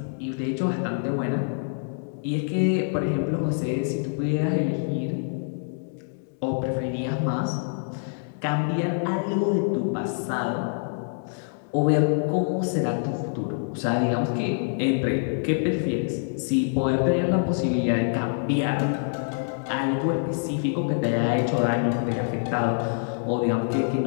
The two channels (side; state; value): right; silent; digital silence